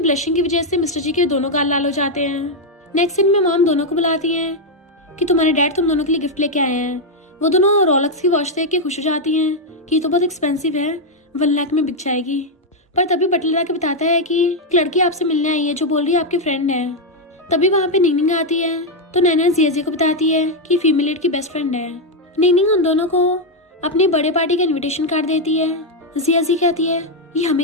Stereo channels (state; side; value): normal; both; correlation 0.01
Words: की वजह से मिस्टर जी के दोनों गाल लाल हो जाते हैं। नेक्स्ट सीन में मॉम दोनों को बुलाती हैं कि तुम्हारे डैड तुम दोनों के लिए गिफ्ट लेके आए हैं। वो दोनों रोलेक्स की वॉच देख के खुश हो जाती हैं कि ये तो बहुत एक्सपेंसिव है, 1 लाख में बिक जाएगी। पर तभी बटलर आके बताता है कि एक लड़की आपसे मिलने आई है जो बोल रही है आपकी फ्रेंड है। तभी वहाँ पे निंगनिंग आती है तो नैना जिया को बताती है कि फीमेल लीड की बेस्ट फ्रेंड है। निंगनिंग उन दोनों को अपनी बर्थडे पार्टी का इन्विटेशन कार्ड देती है। जिया कहती है ये